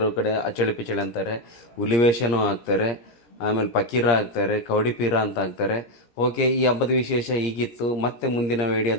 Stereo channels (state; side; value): late; right; 17 ms